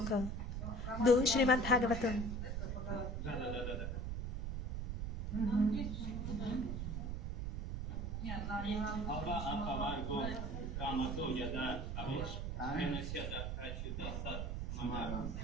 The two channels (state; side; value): noise; right; rumble, 2 dB below the sound